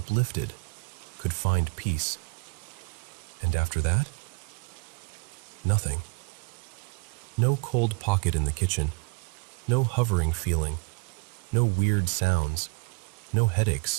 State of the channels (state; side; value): quieter; left; 31.8 dB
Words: could find peace. And after that, nothing. No cold pocket in the kitchen, no hovering feeling, no weird sounds, no